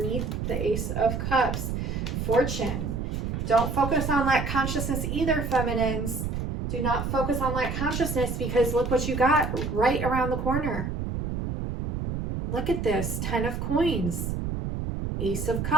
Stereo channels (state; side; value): noise; right; rumble, 3 dB below the sound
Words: the Ace of Cups. Fortune. Don't focus on lack consciousness either, feminines. Do not focus on lack consciousness, because look what you got right around the corner. Look at this. 10 of coins. Ace of